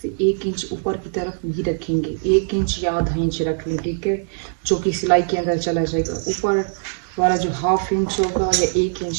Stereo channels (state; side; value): silent; left; digital silence